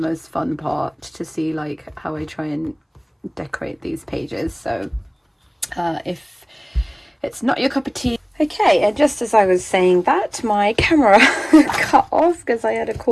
fun part, to see like how I try and decorate these pages. So if it's not your cup of tea. Okay, and just as I was saying that, my camera cut off because I had a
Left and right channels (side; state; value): both; identical; correlation 1.00